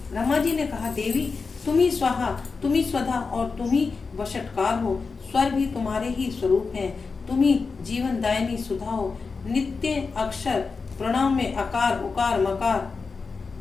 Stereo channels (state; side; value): quieter; right; 4.6 dB